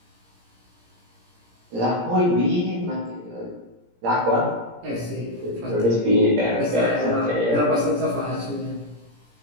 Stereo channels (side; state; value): left; late; 17 ms